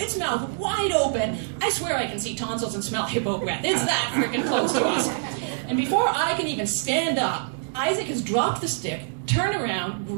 mouth wide open. I swear I can see tonsils and smell hippo breath. It's that freaking close to us. And before I can even stand up, Isaac has dropped the stick, turned around,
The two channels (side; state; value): left; silent; digital silence